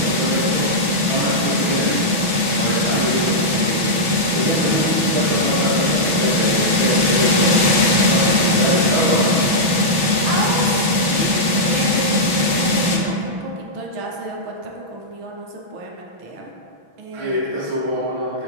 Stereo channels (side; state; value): left; late; 6.1 ms